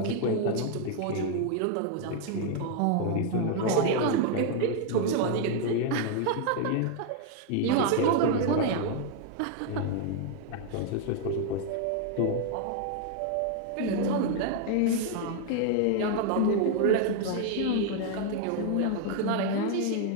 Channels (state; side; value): different; both; correlation 0.00